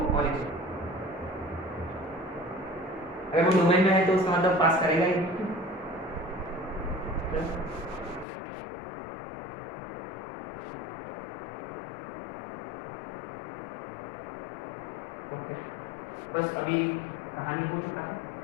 origin। अगर वो डोमेन में है तो उसका मतलब पास करेगा ही। ओके बस अभी कहानी हो चुका है,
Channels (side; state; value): right; drops out; at 8.2 s